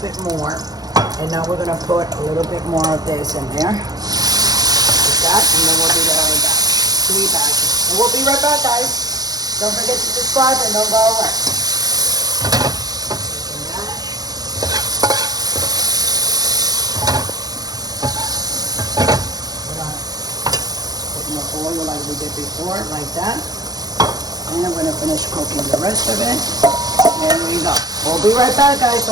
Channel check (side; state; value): left; late; 0.19 ms